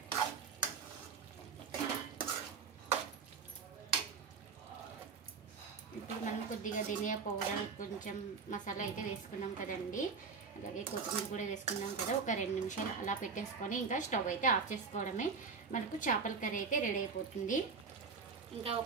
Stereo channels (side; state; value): left; quieter; 5.2 dB